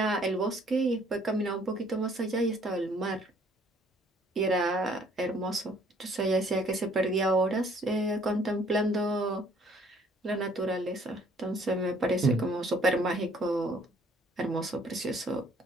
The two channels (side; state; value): both; normal; correlation 0.60